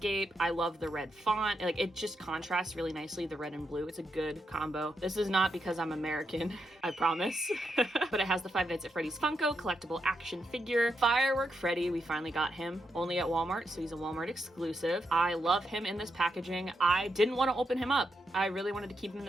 I love the red font. Like, it just contrasts really nicely, the red and blue. It's a good combo. This is not because I'm American, I promise. But it has the Five Nights at Freddy's Funko collectible action figure. Firework Freddy, we finally got him only at Walmart, so he's a Walmart exclusive. I love him in this packaging. I didn't want to open him up. I really wanted to keep him in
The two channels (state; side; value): normal; both; correlation 0.83